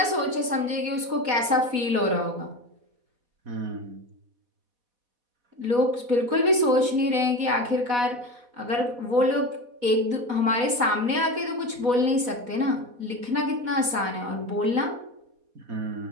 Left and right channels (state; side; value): late; left; 4.1 ms